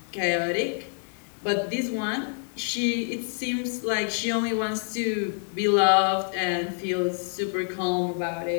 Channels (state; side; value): silent; right; 60 dB below the other